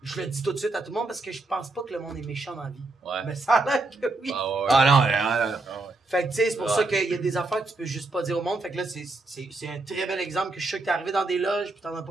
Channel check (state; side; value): quieter; left; 3.2 dB